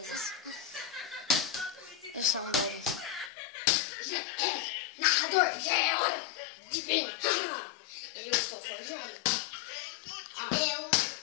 Eu sou um deles. Narrador, já é hora de ver. Eu estou forjando. Eu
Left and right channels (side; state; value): right; drops out; at 3.3 s